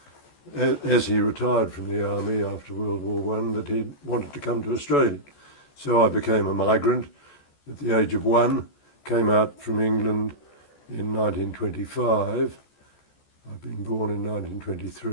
as he retired from the army after World War One, that he wanted to come to Australia. So I became a migrant at the age of 1, came out from England in 1925. I'd been born in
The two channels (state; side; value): late; right; 14 ms